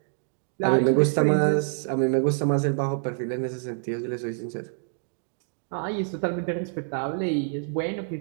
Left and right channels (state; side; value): silent; left; digital silence